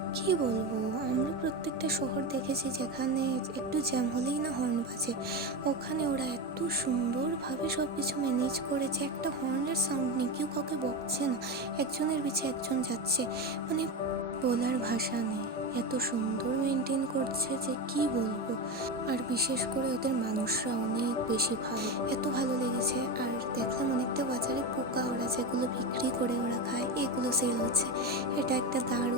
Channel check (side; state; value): both; normal; correlation 0.18